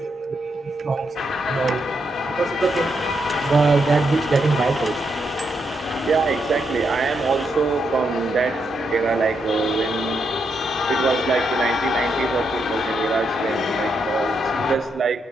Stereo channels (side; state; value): both; normal; correlation 0.80